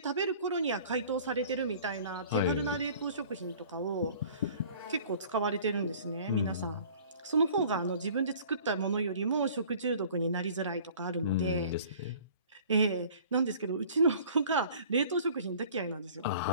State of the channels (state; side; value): inverted; both; correlation -0.49